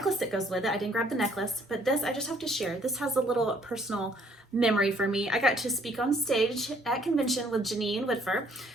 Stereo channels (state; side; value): normal; both; correlation 0.63